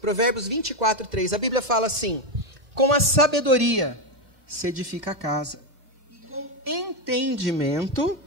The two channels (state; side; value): late; left; 2.6 ms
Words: Provérbios 24:3, a Bíblia fala assim: com a sabedoria se edifica a casa, e com entendimento